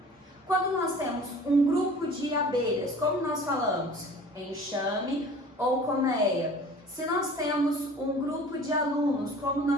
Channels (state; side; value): normal; both; correlation 0.45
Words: Quando nós temos um grupo de abelhas, como nós falamos? Enxame ou colmeia. Se nós temos um grupo de alunos, como